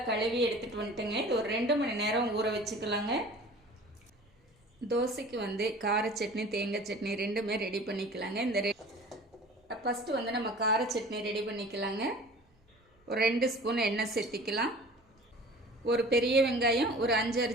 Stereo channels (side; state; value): both; normal; correlation 0.43